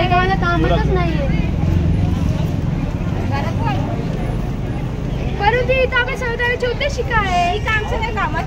मला कामातच नाहीये। परंतु इथं आपल्या संविधानाचे उद्देश काय आहे? ही काम सगळ्या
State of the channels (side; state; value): both; identical; correlation 1.00